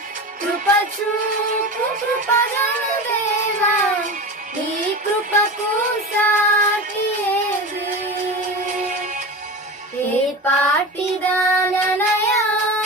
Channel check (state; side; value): normal; both; correlation 0.28